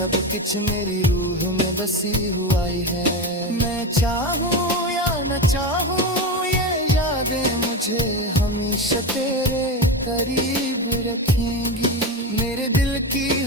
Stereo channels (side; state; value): both; normal; correlation 0.19